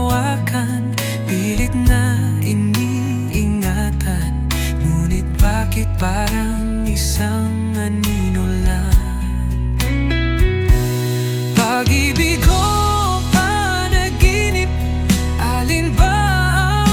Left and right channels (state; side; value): identical; both; correlation 1.00